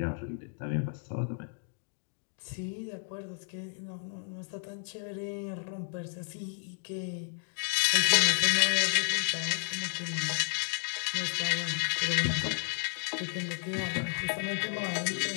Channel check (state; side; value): silent; right; digital silence